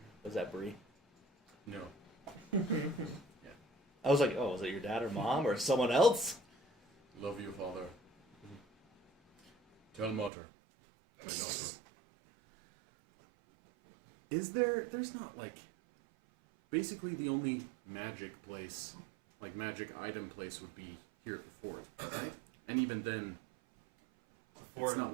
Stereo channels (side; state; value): left; drops out; at 10.3 s